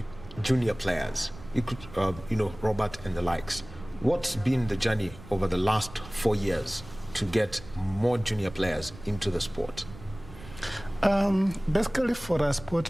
junior players. You could, Robert and the likes. What's been the journey over the last 4 years to get more junior players into the sport? Basically, for a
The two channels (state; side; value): noise; right; rumble, 17 dB below the sound